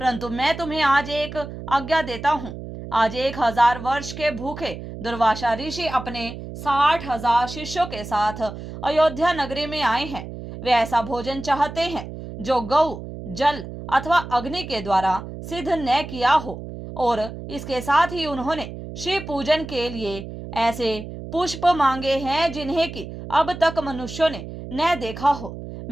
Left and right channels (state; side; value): noise; right; hum, 10 dB below the sound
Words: मैं तुम्हें आज एक आज्ञा देता हूँ। आज 1000 वर्ष के भूखे दुर्वासा ऋषि अपने 60,000 शिष्यों के साथ अयोध्या नगरी में आए हैं। वे ऐसा भोजन चाहते हैं जो गौ, जल अथवा अग्नि के द्वारा सिद्ध न किया हो, और इसके साथ ही उन्होंने शिव पूजन के लिए ऐसे पुष्प मांगे हैं जिन्हें कि अब तक मनुष्यों ने न देखा हो।